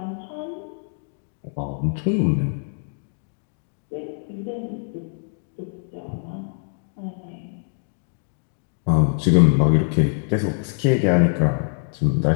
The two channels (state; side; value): silent; right; 57 dB below the other